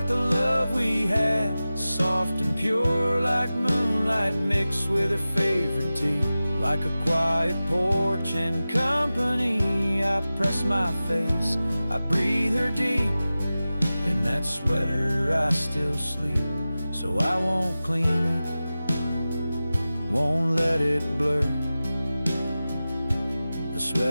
the love we had, soft and pure, like moonlight mixed with her favorite tea. Like a quiet porch and company, I press my face, I breathe her deep. In that sweater I still sleep, so I won't clean it, won't let it blur. The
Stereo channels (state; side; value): inverted; both; correlation -0.95